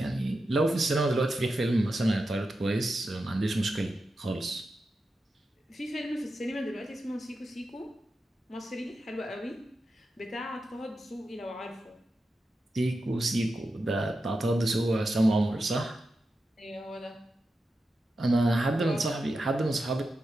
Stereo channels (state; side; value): normal; both; correlation 0.89